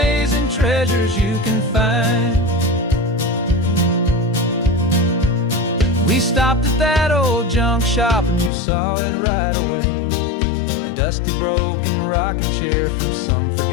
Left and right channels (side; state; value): right; drops out; at 8.5 s